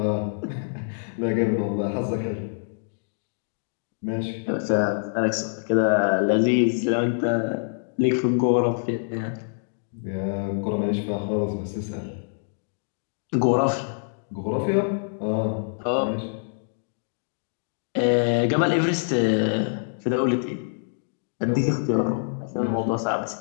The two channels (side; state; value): right; silent; digital silence